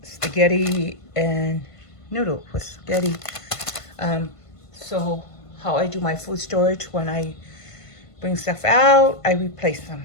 spaghetti and noodle with spaghetti. So how I do my food storage, when I bring stuff out, I replace them.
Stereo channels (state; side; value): late; right; 1.5 ms